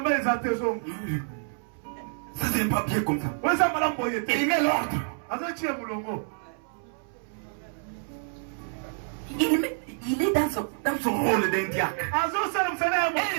Ça, c'est pas bien comme ça. Il met l'ordre. Il est dans son rôle d'un diacre. Et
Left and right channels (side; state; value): left; silent; 59 dB below the other